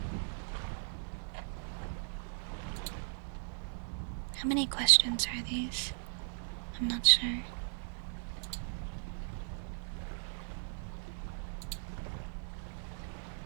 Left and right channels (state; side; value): silent; left; digital silence